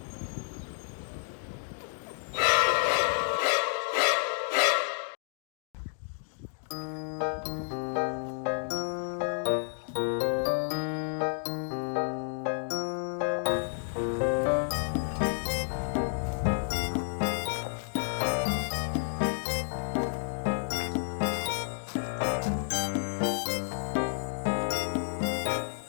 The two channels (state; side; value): silent; right; digital silence